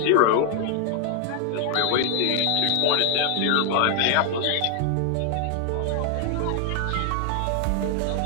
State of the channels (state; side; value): different; both; correlation 0.00